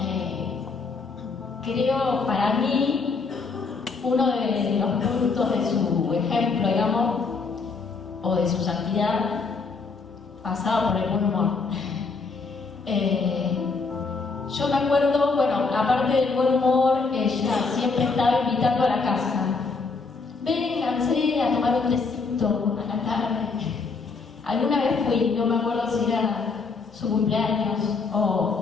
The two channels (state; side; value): quieter; right; 4.4 dB